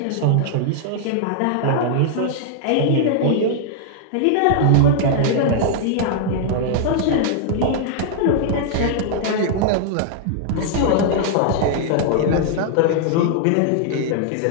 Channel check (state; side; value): different; both; correlation -0.01